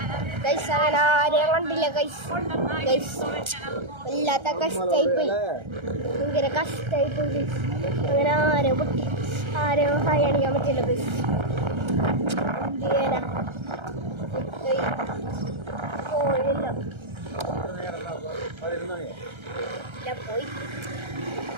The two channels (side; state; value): left; late; 1.3 ms